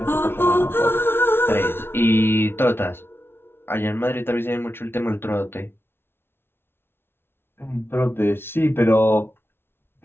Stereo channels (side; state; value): right; late; 0.11 ms